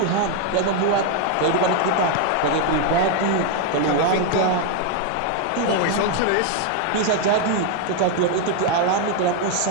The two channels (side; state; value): both; different; correlation 0.01